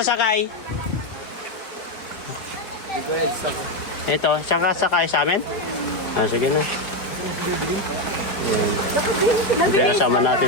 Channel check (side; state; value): right; late; 4.5 ms